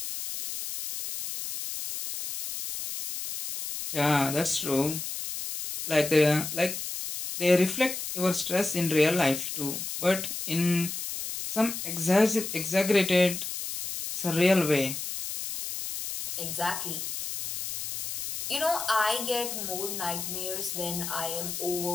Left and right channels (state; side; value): noise; left; hiss, 6 dB below the sound